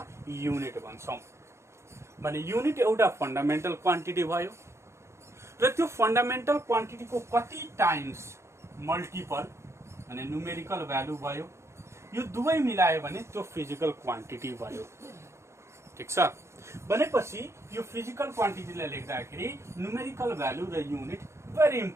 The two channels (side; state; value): left; late; 0.13 ms